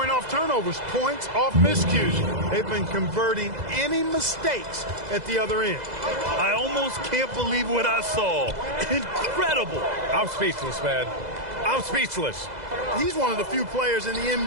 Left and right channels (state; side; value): late; left; 2.0 ms